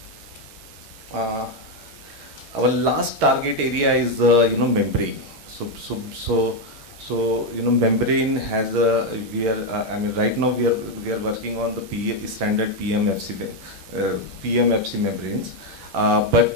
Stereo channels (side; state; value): both; normal; correlation 0.04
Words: Our last target area is membrane. So membrane has a right now we are working on the standard PMFC membranes,